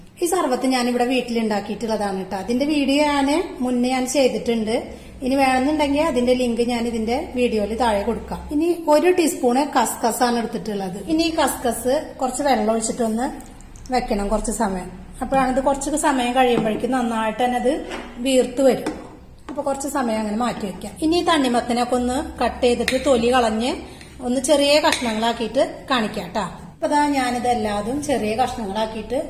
ഈ സർബത്ത് ഞാനിവിടെ വീട്ടിലുണ്ടാക്കിയിട്ടുള്ളതാണ് കേട്ടോ. അതിന്റെ വീഡിയോ മുന്നേ ഞാൻ ചെയ്തിട്ടുണ്ട്. ഇനി വേണമെന്നുണ്ടെങ്കിൽ അതിന്റെ ലിങ്ക് ഞാൻ ഇതിന്റെ വീഡിയോയിൽ താഴെ കൊടുക്കാം. ഇനി 1 ടീസ്പൂണ് കസ്കസ് ആണ് എടുത്തിട്ടുള്ളത്. ഇനി ഈ കസ്കസ് കുറച്ച് വെള്ളം ഒഴിച്ചിട്ടൊന്ന് വെക്കണം കുറച്ച് സമയം. അപ്പോഴാണ് ഇത് കുറച്ച് സമയം കഴിയുമ്പോഴേക്കും നന്നായിട്ട് തന്നെ അത് വീർത്ത് വരും. അപ്പൊ കുറച്ച് സമയം അങ്ങനെ മാറ്റി വെക്കാം. ഇനി ഈ തണ്ണിമത്തനൊക്കെ ഒന്ന് കട്ട് ചെയ്തിട്ട് തൊലി കളഞ്ഞ് ഒന്ന് ചെറിയ കഷ്ണങ്ങളാക്കിയിട്ട് കാണിക്കാം കേട്ടോ. അപ്പൊ അതാ ഞാനിതെല്ലാതും ചെറിയ കഷ്ണങ്ങളാക്കിയിട്ട്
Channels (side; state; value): both; identical; correlation 1.00